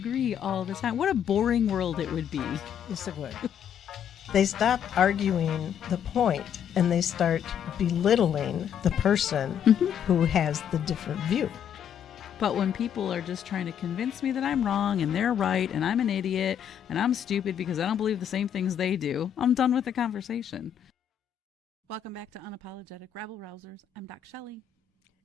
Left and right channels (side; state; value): right; quieter; 8.9 dB